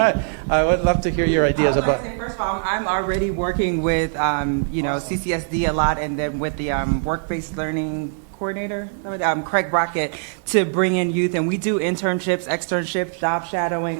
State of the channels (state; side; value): silent; left; 64 dB below the other